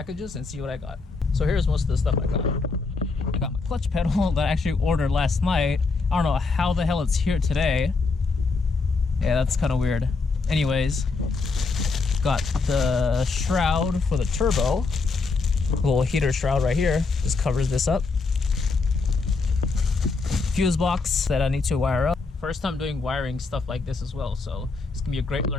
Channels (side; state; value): right; quieter; 4.1 dB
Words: and see what I got. So here's most of the stuff I got. I got my clutch pedal that I actually ordered last night. I don't know how the hell it's here today. Yeah, that's kind of weird. Anyways, got the shroud for the turbo. A little heater shroud right here. Just covers this up. Fuse box that I need to wire up. First time doing wiring stuff like this as well, so it's gonna be a great